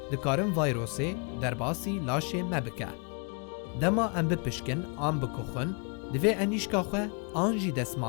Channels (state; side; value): quieter; right; 36.9 dB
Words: dikarin vayrosê derbasî laşê me bike. Dema em bipişkin an bikuxin, divê enîşka xwe an jî